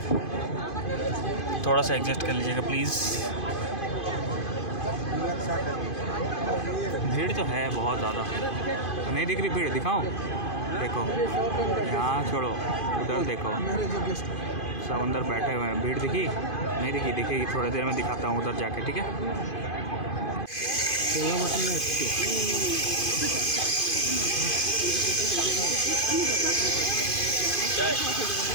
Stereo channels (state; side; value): late; right; 2.5 ms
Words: थोड़ा सा एडजस्ट कर लीजिएगा प्लीज़। भीड़ तो है बहुत ज़्यादा, नहीं दिख रही भीड़? दिखाओ, देखो यहाँ छोड़ो, उधर देखो, सब अंदर बैठे हुए हैं। भीड़ दिखी? नहीं दिखी? दिखेगी, थोड़ी देर में दिखाता हूँ उधर जाके, ठीक है?